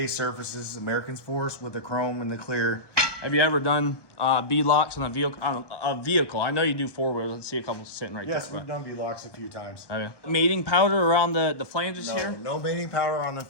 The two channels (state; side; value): late; right; 1.1 ms